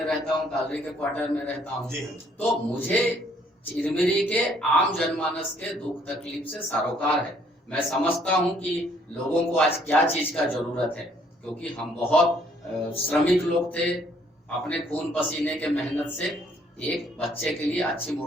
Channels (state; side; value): normal; both; correlation 0.64